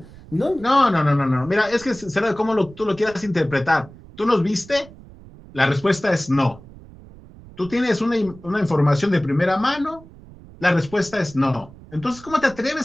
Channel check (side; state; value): right; noise; rumble, 20 dB below the sound